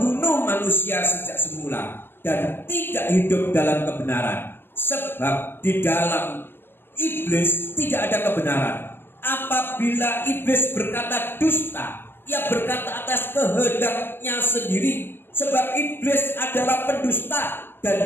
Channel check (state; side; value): late; right; 0.10 ms